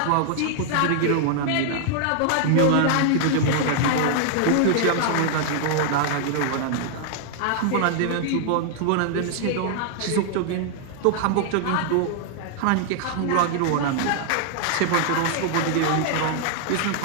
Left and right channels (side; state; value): both; different; correlation 0.00